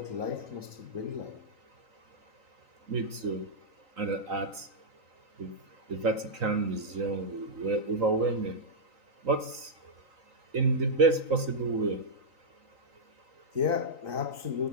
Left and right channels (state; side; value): late; left; 3.9 ms